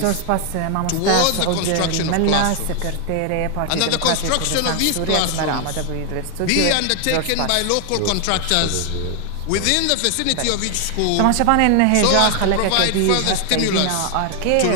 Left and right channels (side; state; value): both; different; correlation 0.00